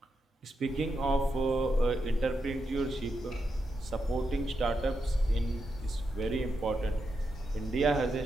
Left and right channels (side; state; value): both; normal; correlation 0.85